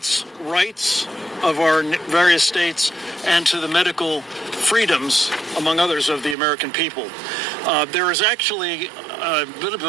rights of our various states, and to the medical freedoms, among others, of the American people. There is actually a bit of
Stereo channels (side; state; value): left; drops out; at 6.4 s